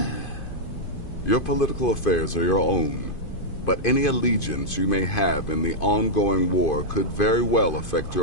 Your political affairs are your own, but any allegiance you may have in the ongoing war could very well affect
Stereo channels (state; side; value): late; right; 2.5 ms